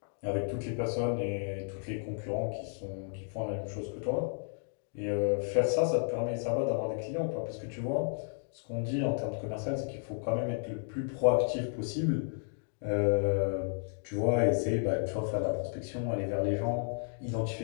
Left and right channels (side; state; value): right; silent; digital silence